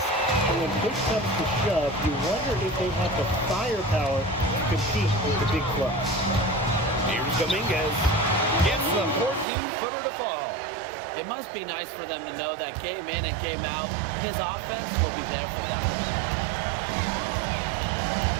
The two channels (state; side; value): drops out; left; at 9.5 s